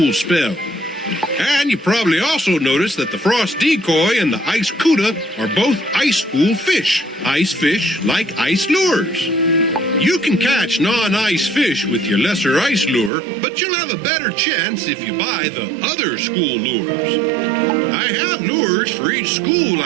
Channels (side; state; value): left; drops out; at 13.1 s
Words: spell. And you probably also noticed that the frost decoy and the ice cuda are both ice school fish. Ice fish like ice lures. You can catch non-ice fish with your lesser ice lure, but you'll have a better chance if you buy the other school lures. I have lures for each school